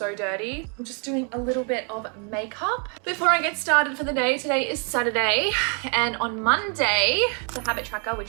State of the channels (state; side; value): quieter; left; 39.3 dB